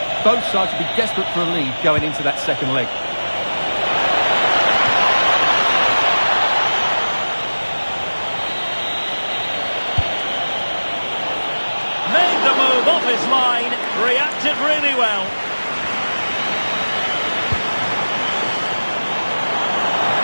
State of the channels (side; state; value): both; inverted; correlation -1.00